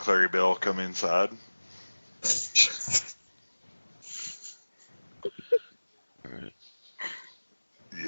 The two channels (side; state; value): both; inverted; correlation -1.00